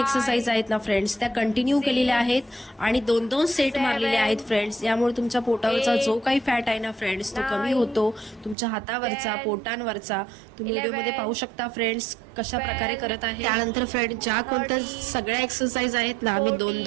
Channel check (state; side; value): drops out; left; at 8.6 s